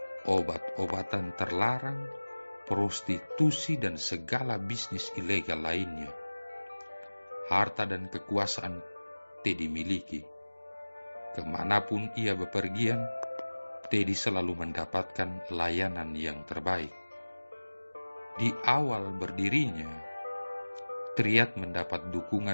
obat-obatan terlarang, prostitusi, dan segala bisnis ilegal lainnya. Harta dan kekuasaan Teddy miliki. Kemanapun ia bepergian, Teddy selalu mendapatkan layanan yang terbaik. Di awal berdirinya, Triad mendapat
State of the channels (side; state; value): both; inverted; correlation -1.00